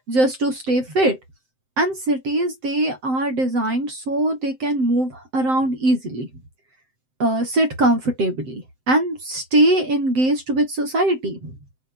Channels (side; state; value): left; late; 7.7 ms